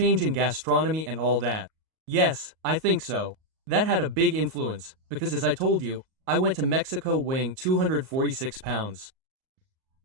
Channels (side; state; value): left; late; 38 ms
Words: in gastronomy and all that. Yes, I think so. That had a big influence, because as I told you, I went to Mexico weighing 246 pounds.